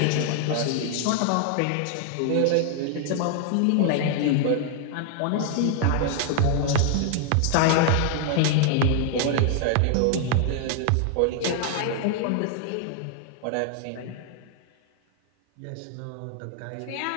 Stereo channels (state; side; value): different; both; correlation 0.00